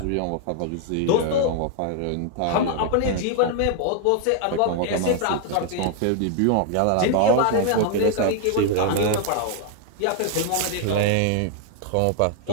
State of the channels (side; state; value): both; different; correlation 0.00